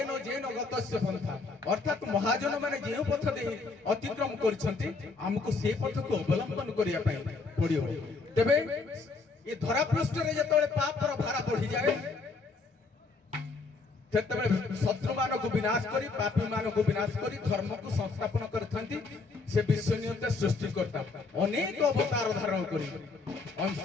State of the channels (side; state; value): right; quieter; 4.0 dB